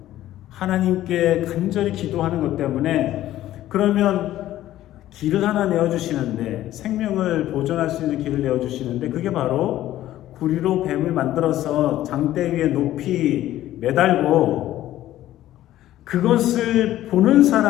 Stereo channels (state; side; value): quieter; right; 13.8 dB